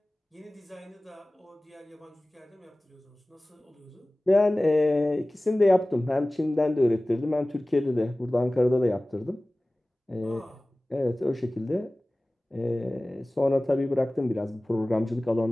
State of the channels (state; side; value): normal; both; correlation 0.98